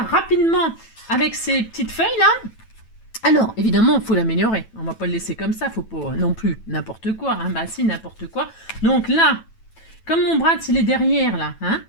rapidement, avec ces petites feuilles là. Alors, évidemment, il faut l'améliorer. On ne va pas le laisser comme ça. Il ne faut pas non plus n'importe quoi. Hein. Bah si, n'importe quoi. Donc là, comme mon bras, il est derrière, là. Hein,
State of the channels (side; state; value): right; late; 9.1 ms